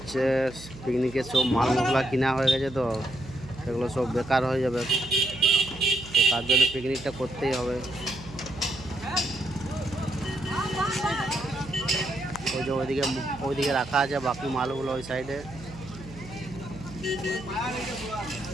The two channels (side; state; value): right; noise; hum, 16 dB below the sound